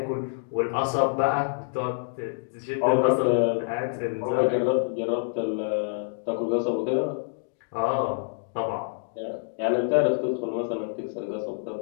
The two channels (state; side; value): silent; right; digital silence